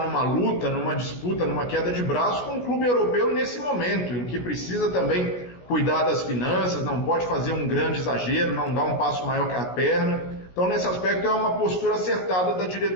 numa luta, numa disputa, numa queda de braço com o clube europeu nesse momento, em que precisa também cuidar das finanças, não pode fazer um grande exagero, não dar um passo maior que a perna. Então, nesse aspecto, é uma postura acertada da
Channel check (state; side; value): late; right; 16 ms